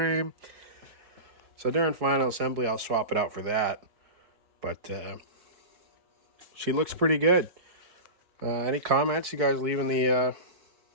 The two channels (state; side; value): late; left; 4.7 ms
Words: So during final assembly, I'll swap it out for that. But she looks pretty good. Any comments you guys leave in the...